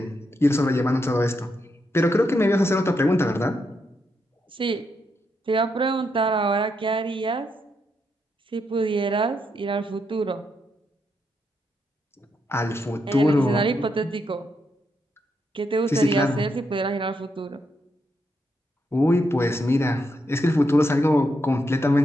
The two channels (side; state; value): both; normal; correlation 0.81